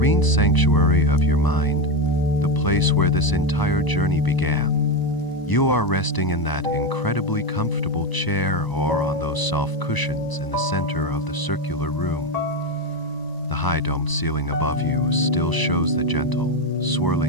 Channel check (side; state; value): right; late; 1.0 ms